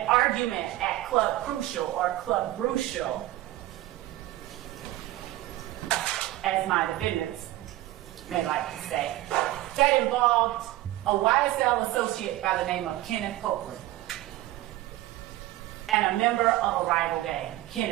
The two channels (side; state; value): left; quieter; 16.2 dB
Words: argument at Club Crucial or Club Brucial, as my defendants may like to say, that involved a YSL associate by the name of Kenneth Copeland and a member of a rival gang.